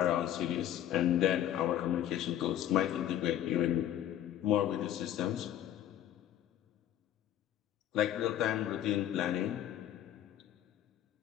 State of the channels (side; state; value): right; quieter; 11.5 dB